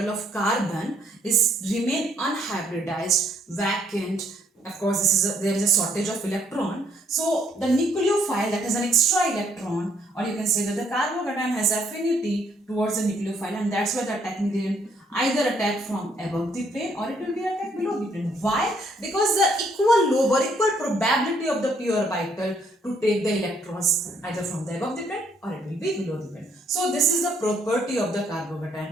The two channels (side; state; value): both; normal; correlation 0.68